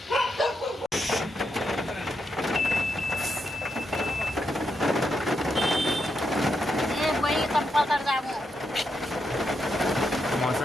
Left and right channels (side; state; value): both; normal; correlation 0.82